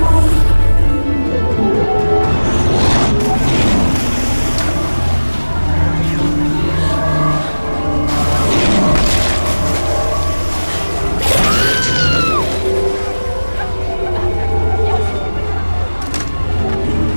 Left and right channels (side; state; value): both; inverted; correlation -1.00